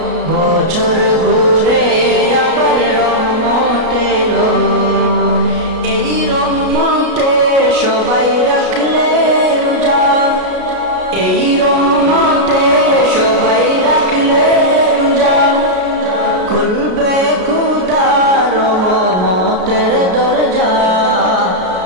বছর ঘুরে আবার রহমত এলো। এই রহমতে সবাই রাখলে রোজা, এই রহমতে সবাই রাখলে রোজা। খুলবে খুদার রহমতের দরজা,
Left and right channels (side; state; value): left; late; 33 ms